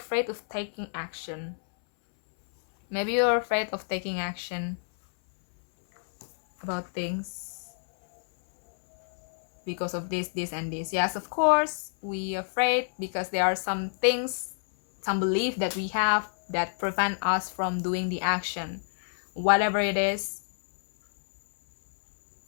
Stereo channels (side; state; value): right; silent; 59 dB below the other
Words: of taking action. Maybe you are afraid of taking action about things because of this, and this. Yes, of course, we are afraid because there are some things, some belief that we have that prevent us from doing the action, whatever it is.